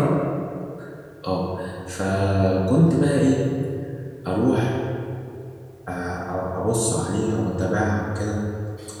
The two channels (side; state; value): both; identical; correlation 1.00